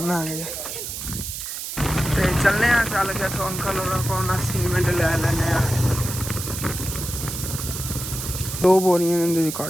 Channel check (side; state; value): right; noise; hiss, 6 dB below the sound